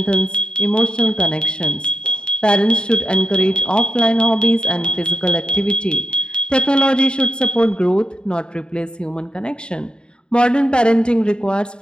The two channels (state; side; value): late; right; 0.050 ms